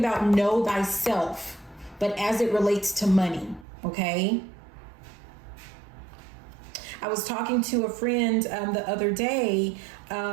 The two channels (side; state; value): left; drops out; at 3.7 s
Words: know thyself, but as it relates to money, okay? I was talking to a friend the other day